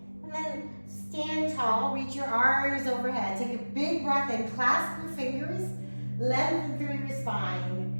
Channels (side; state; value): both; inverted; correlation -1.00